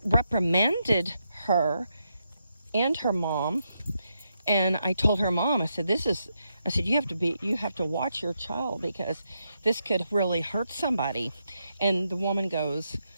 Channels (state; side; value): inverted; both; correlation -0.82